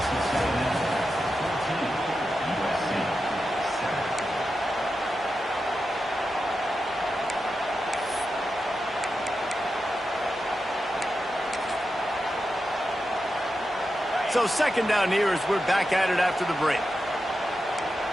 So 2nd down here as we're back at it after the break.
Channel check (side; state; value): both; normal; correlation 0.89